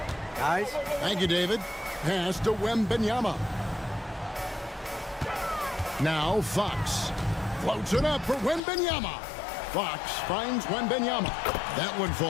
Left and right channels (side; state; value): right; drops out; at 8.6 s